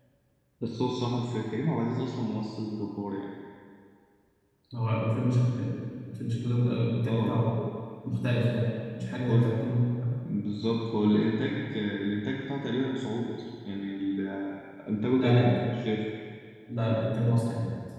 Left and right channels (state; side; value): identical; both; correlation 1.00